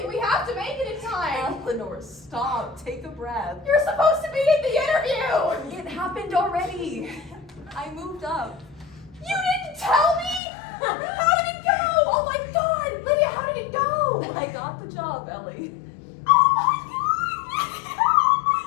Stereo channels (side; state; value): right; drops out; at 10.4 s